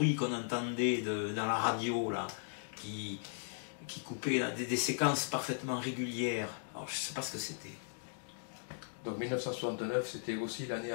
qu'on entendait dans la radio, là, qui coupait là, des séquences parfaitement régulières. Alors je ne sais pas ce que c'était. Donc 1969, c'était aussi l'année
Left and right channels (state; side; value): silent; right; digital silence